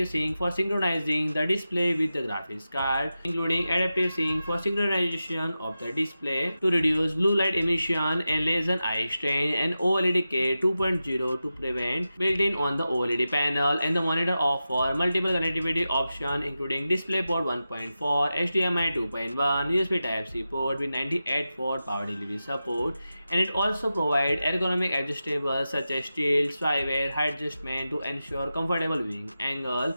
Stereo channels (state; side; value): inverted; both; correlation -0.92